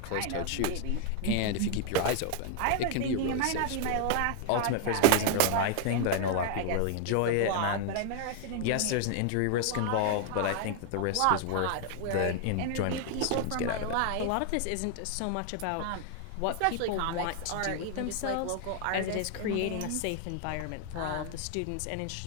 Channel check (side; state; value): both; different; correlation 0.00